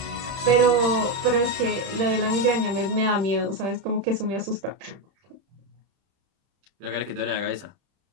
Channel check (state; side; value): late; left; 31 ms